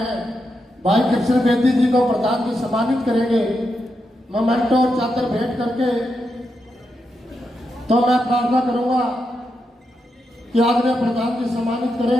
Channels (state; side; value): normal; both; correlation 0.85